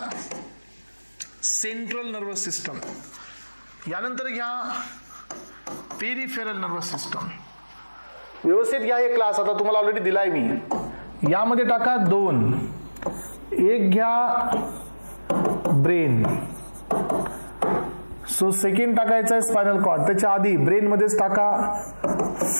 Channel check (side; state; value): both; inverted; correlation -1.00